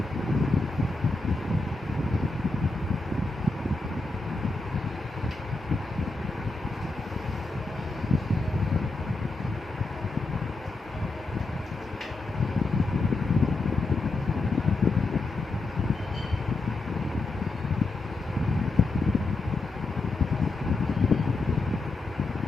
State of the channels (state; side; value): quieter; right; 3.3 dB